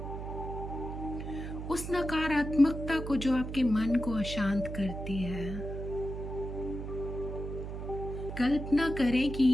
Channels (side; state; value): right; noise; hum, 7 dB below the sound